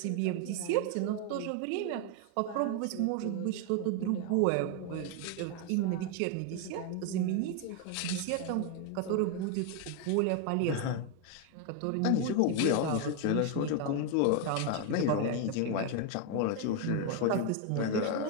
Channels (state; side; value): different; both; correlation 0.01